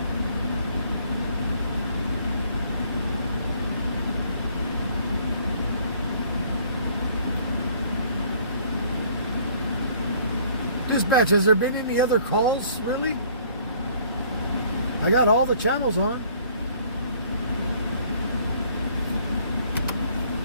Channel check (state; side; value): inverted; both; correlation -0.59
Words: Dispatch, has there been any other calls, really? I got all the channels on.